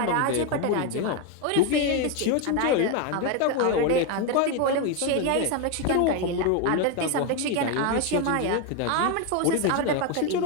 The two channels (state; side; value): different; both; correlation 0.02